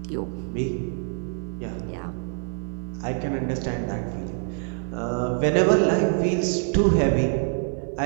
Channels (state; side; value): silent; left; 62 dB below the other